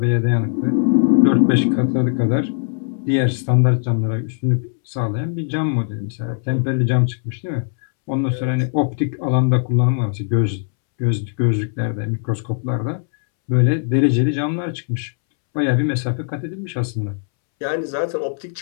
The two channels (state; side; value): silent; right; 66 dB below the other